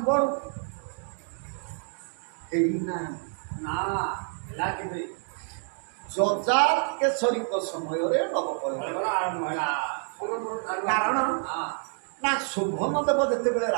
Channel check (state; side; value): silent; left; 59 dB below the other